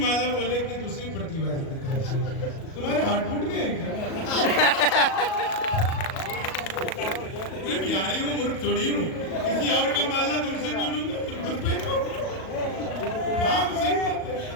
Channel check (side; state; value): right; late; 37 ms